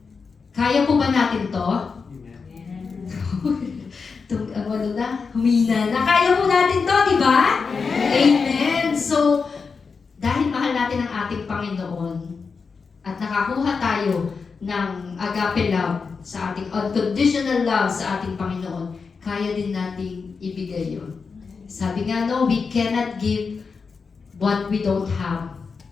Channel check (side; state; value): right; quieter; 5.1 dB